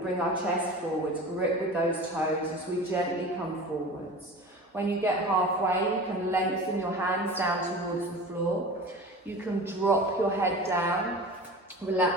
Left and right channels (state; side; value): normal; both; correlation 0.35